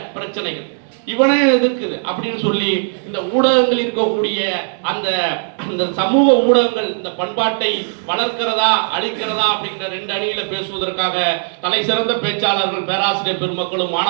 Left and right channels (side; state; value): left; silent; digital silence